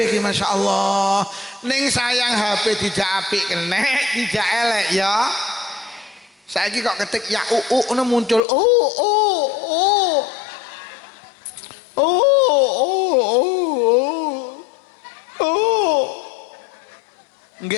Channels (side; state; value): right; drops out; at 8.4 s